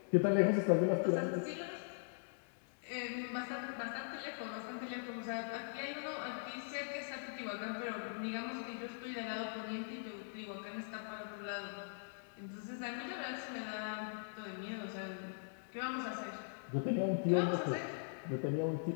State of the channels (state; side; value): silent; right; digital silence